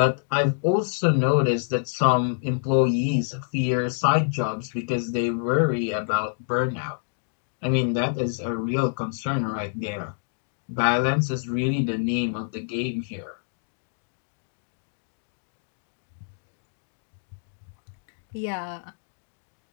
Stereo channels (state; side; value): silent; right; digital silence